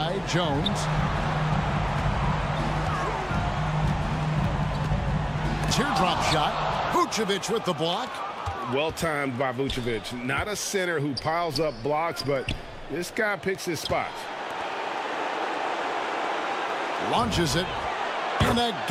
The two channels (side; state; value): both; identical; correlation 1.00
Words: Jones. Teardrop shot. Vucevic with the block. Well timed by Vucevic. Not a center who piles up blocks, but this guy picks his spots. Launches it. And